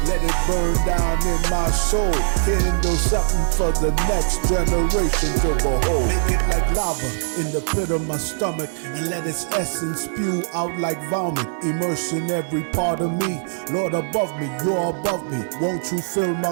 let it burn down in my soul. Kindle something for the next generation to behold. Make it like lava in the pit of my stomach, and let its essence spew out like vomit. Immersing every part of me. Lord above me, you're above me. Won't you fill my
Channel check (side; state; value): left; silent; digital silence